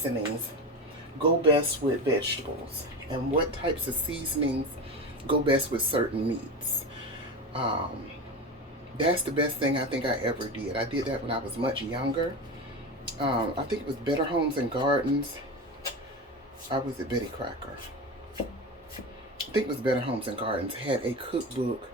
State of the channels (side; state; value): both; normal; correlation 0.24